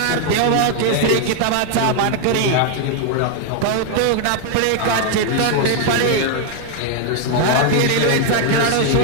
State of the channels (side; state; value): both; different; correlation 0.00